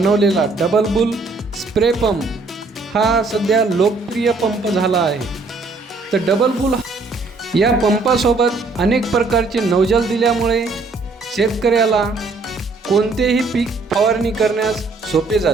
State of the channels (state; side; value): quieter; left; 3.7 dB